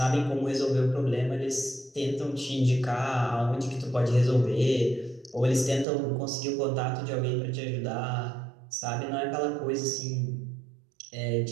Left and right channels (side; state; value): left; drops out; at 5.9 s